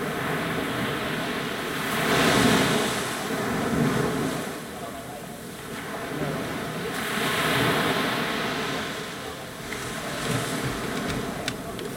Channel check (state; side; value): identical; both; correlation 1.00